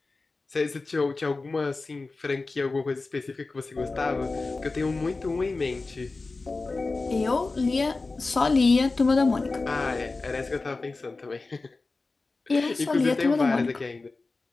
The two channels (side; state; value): right; quieter; 3.6 dB